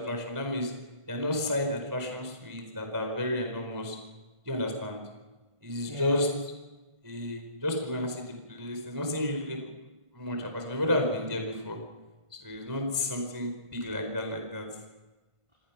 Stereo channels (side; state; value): left; late; 1.5 ms